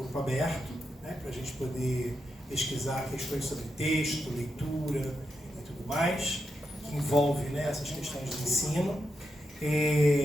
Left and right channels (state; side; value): normal; both; correlation 0.85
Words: aberto, para a gente poder pesquisar questões sobre texto, leitura e tudo mais, que envolve essas questões de ensino.